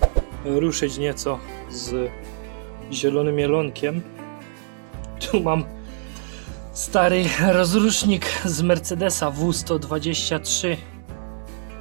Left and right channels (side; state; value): left; silent; digital silence